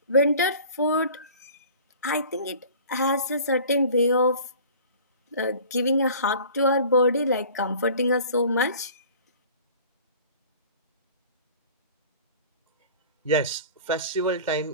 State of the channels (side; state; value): both; inverted; correlation -0.45